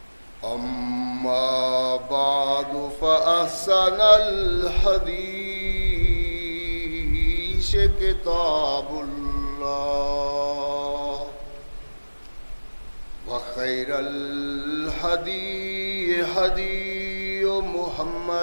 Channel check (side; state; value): both; inverted; correlation -1.00